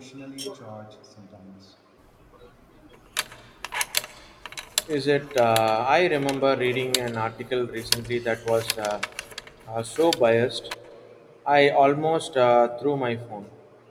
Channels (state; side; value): identical; both; correlation 1.00